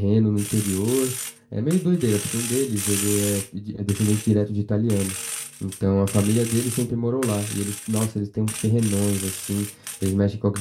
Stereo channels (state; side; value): identical; both; correlation 1.00